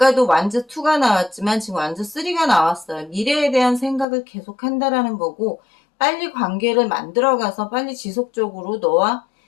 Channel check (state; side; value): drops out; right; at 4.0 s